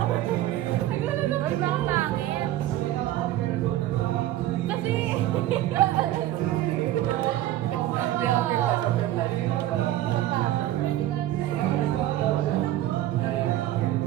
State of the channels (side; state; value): left; quieter; 14.0 dB